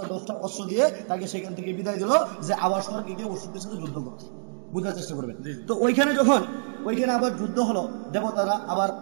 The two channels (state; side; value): silent; left; digital silence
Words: 10টা অস্ত্র দিয়ে তাকে সেখান থেকে বিদায় দিল যে আবার স্বর্গে গিয়ে অসুরদের সাথে যুদ্ধ করতে। বুঝার চেষ্টা করবেন। তো ওইখানে আবার যুদ্ধ হলো, দেবতারা আবার